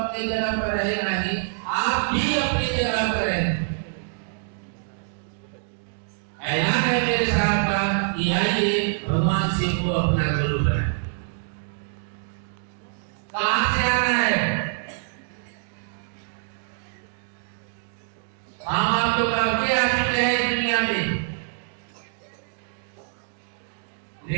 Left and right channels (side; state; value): left; silent; digital silence